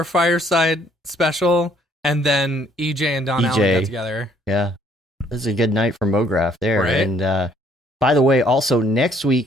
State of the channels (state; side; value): normal; both; correlation 0.64